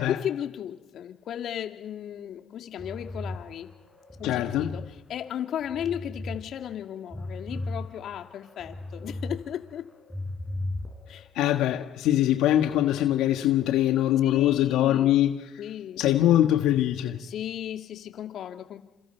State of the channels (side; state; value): right; quieter; 10.9 dB